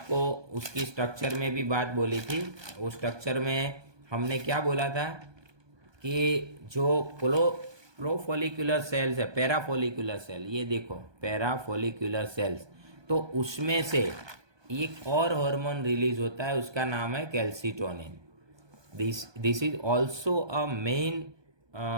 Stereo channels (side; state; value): left; late; 1.2 ms